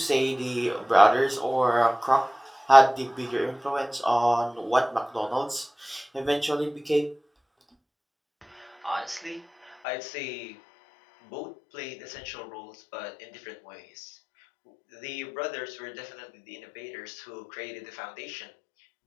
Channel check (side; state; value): right; drops out; at 9.8 s